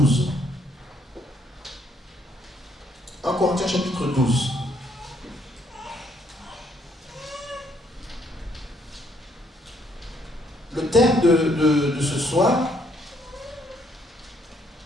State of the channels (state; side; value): normal; both; correlation 0.69